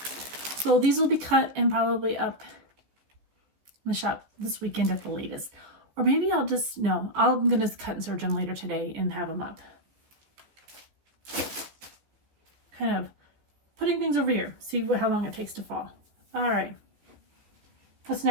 So these will be cut and probably up in the shop this weekend at the latest. Or maybe I'm going to cut and serge them later today and have them up. Kind of putting things over here. See how long it takes to fall. All right. What's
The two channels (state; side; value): late; left; 15 ms